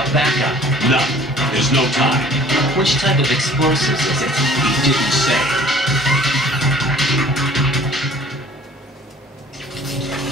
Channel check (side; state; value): both; normal; correlation 0.51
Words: backup? None. There's no time. Which type of explosives is it? He didn't say.